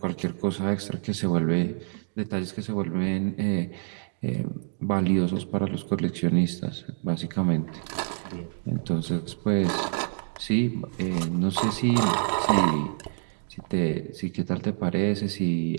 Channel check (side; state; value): left; silent; digital silence